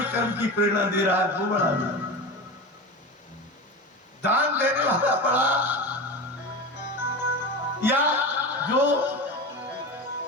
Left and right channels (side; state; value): both; normal; correlation 0.26